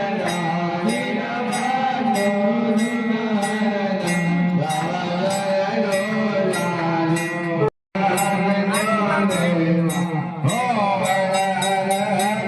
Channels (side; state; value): both; identical; correlation 1.00